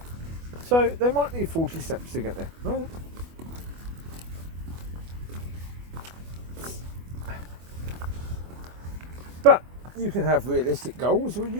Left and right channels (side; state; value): left; late; 24 ms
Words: So they might need 40 steps to get there. Right. But you can have realistic goals, or